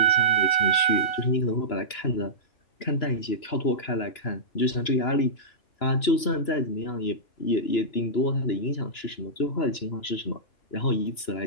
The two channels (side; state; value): right; late; 2.9 ms